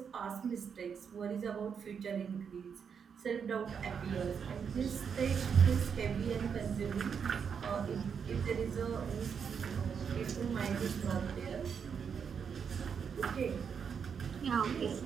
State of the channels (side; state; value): left; quieter; 6.8 dB